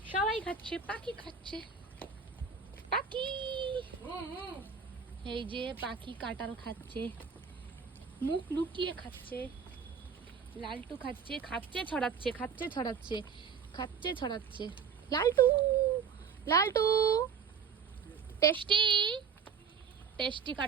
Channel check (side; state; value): left; quieter; 6.5 dB